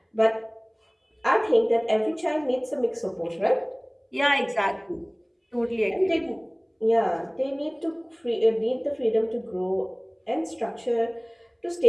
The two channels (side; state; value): both; identical; correlation 1.00